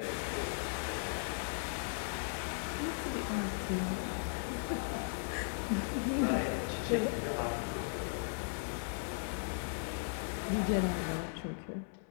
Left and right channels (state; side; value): silent; right; 53 dB below the other